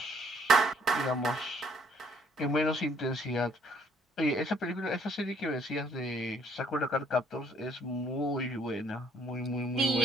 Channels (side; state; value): both; normal; correlation 0.64